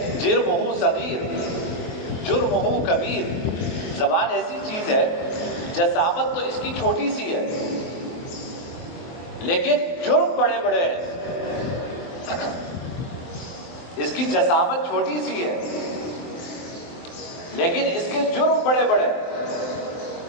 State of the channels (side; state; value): right; late; 23 ms